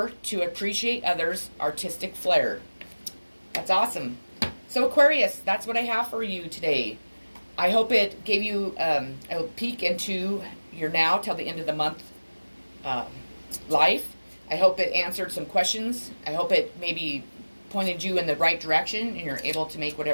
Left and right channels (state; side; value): inverted; both; correlation -1.00